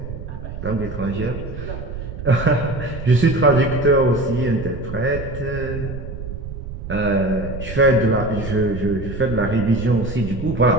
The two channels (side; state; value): right; noise; rumble, 9 dB below the sound